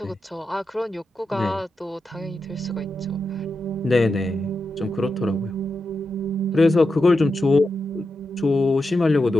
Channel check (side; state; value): both; normal; correlation 0.88